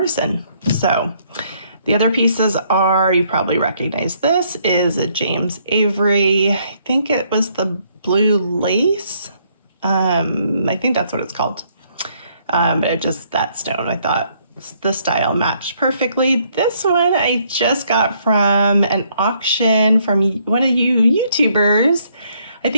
So the other pieces are, you probably recognize this, is a James Avery. I think it was the blue lace. I think that's what it's called. But that stone, I thought the style matched perfectly. This one I just got from an auction from one of you YouTubers. I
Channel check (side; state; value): both; inverted; correlation -0.69